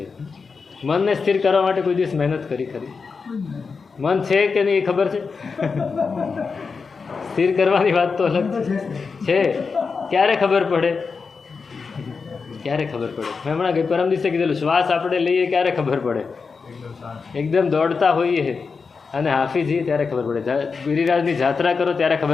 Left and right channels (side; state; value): right; quieter; 5.0 dB